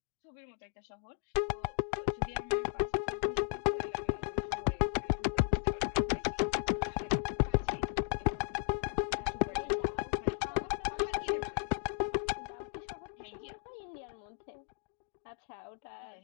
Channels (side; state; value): right; silent; 54 dB below the other